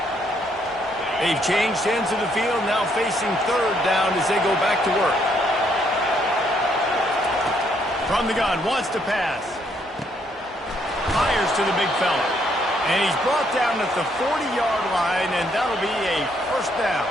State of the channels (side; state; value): both; normal; correlation 0.71